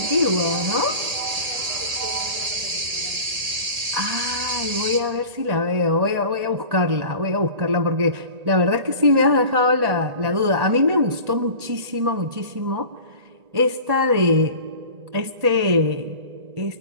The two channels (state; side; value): late; left; 1.8 ms